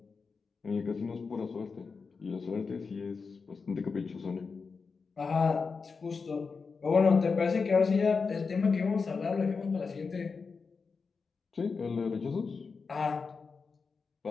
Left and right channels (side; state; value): right; quieter; 4.9 dB